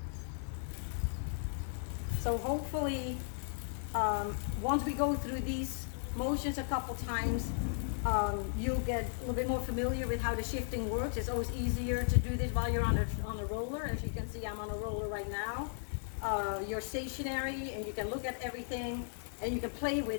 So hopefully, once we go through these motions a couple times, you'll get a little bit more familiar with how the shifting works. It's always easier to do this while you're on a roller. As you can see, I'm on a roller right now. You're stationary, and you can look at everything, and you can play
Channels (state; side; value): silent; right; digital silence